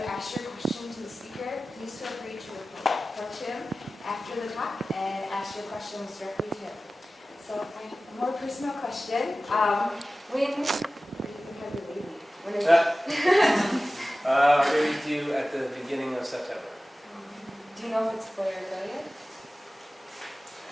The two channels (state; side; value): normal; both; correlation 0.96